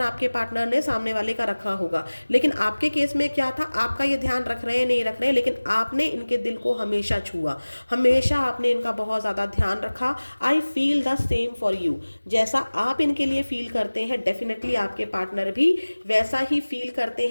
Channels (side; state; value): both; inverted; correlation -1.00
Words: आपके पार्टनर ने सामने वाले का रखा होगा। लेकिन आपके केस में क्या था, आपका ये ध्यान रख रहे हैं नहीं रख रहे हैं, लेकिन आपने इनके दिल को हमेशा छुआ, हमेशा आपने इनका बहुत ज़्यादा ध्यान रखा। I feel the same for you. जैसा आप इनके लिए फील करते हैं, डेफिनेटली आपके पार्टनर भी वैसा ही फील करते